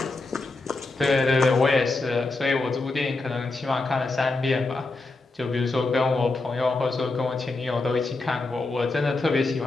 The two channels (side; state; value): right; quieter; 3.3 dB